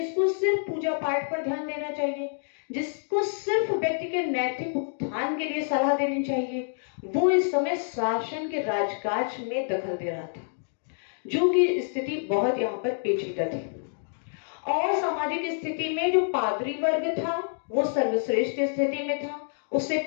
सिर्फ पूजा पाठ पर ध्यान देना चाहिए, जिसको सिर्फ व्यक्ति के नैतिक उत्थान के लिए सलाह देनी चाहिए, वो इस समय शासन के राजकाज में दखल दे रहा था। जो कि स्थिति बहुत यहाँ पर पेचीदा थी। और सामाजिक स्थिति में जो पादरी वर्ग था वो सर्वश्रेष्ठ स्थिति में था, उससे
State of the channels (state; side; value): silent; right; digital silence